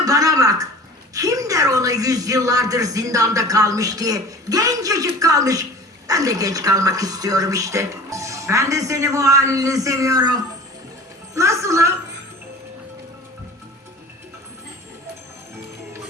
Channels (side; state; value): both; normal; correlation 0.41